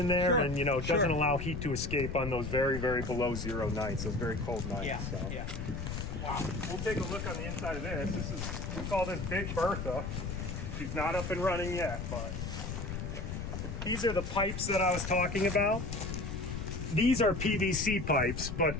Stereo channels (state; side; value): noise; left; rumble, 5 dB below the sound